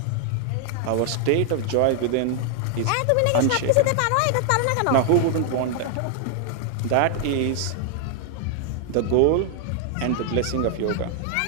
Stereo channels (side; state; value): both; different; correlation 0.00